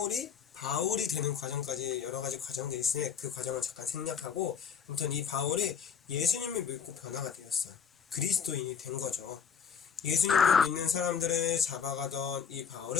되는 과정까지 여러 가지 과정들이 있으니 그 과정은 잠깐 생략하고, 아무튼 이 바울이 예수님을 믿고 변화가 되었어요. 그리스도인이 된 거죠. 예수님을 믿는 사람들을 잡아가던 이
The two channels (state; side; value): quieter; right; 7.0 dB